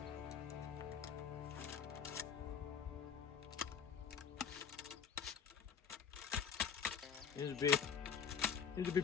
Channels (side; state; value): right; quieter; 7.0 dB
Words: Seems to be